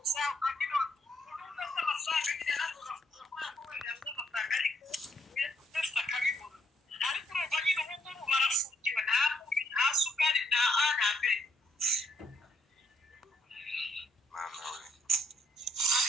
ukagira urubuga rw'amafaranga nyine ntabwo bakora ko wenda amafaranga, ariko wese akabibona. Ariko urumva nyine ubu ngubu barafungiwe, nta munyu nta sukari nta A nta B.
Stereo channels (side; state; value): both; normal; correlation 0.70